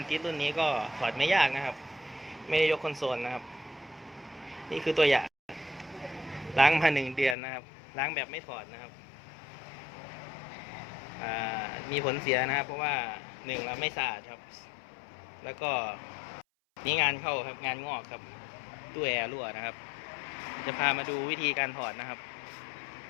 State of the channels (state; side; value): drops out; right; at 7.4 s